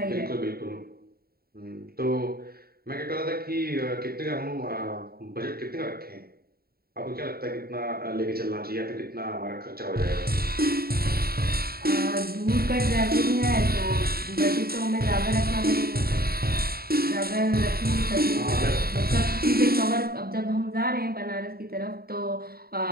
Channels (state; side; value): late; left; 0.44 ms